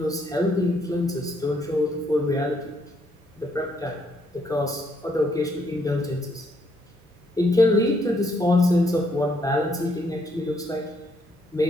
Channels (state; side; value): normal; both; correlation 0.72